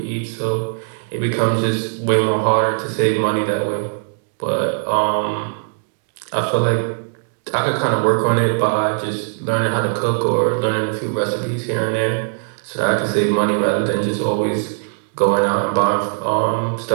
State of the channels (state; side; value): silent; left; digital silence